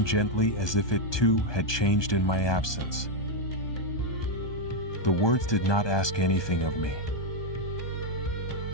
gently, as if it too had changed in my absence. The words did not ask anything of me.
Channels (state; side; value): late; right; 1.2 ms